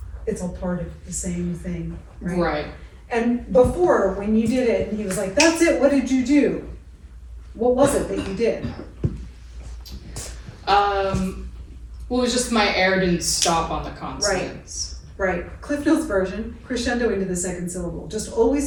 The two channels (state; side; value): identical; both; correlation 1.00